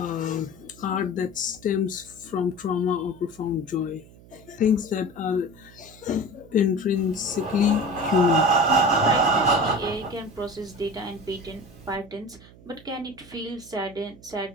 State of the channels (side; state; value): right; noise; hum, 22 dB below the sound